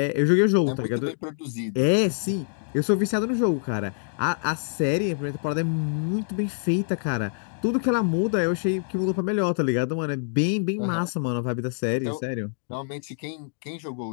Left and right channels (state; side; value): silent; right; digital silence